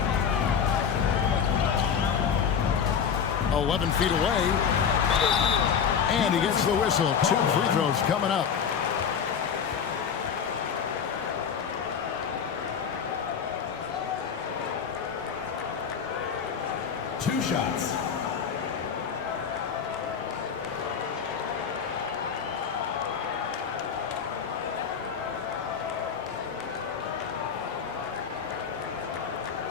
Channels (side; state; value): right; quieter; 7.1 dB